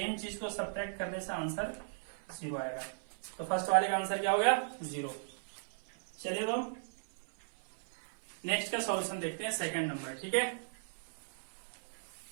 चीज को सब्ट्रैक्ट करने से आंसर 0 आएगा। तो फर्स्ट वाले का आंसर क्या हो गया? 0। चलिए तो नेक्स्ट का सॉल्यूशन देखते हैं, सेकंड नंबर। ठीक है,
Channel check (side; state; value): left; silent; 53 dB below the other